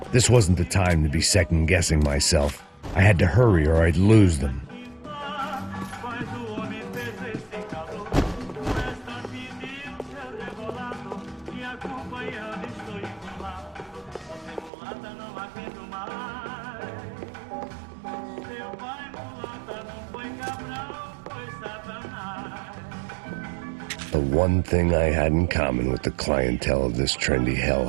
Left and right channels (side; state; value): left; drops out; at 14.7 s